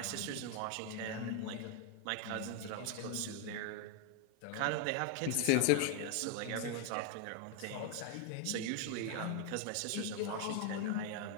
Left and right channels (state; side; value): different; both; correlation 0.00